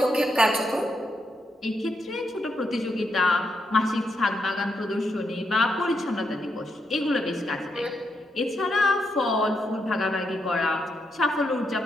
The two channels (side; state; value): both; normal; correlation 0.81